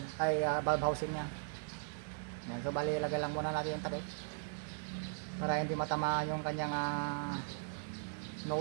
valve housing nya. Ayan. So bali ilagay lang muna natin yung takip para hindi matamaan yung kanyang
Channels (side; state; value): left; silent; 52 dB below the other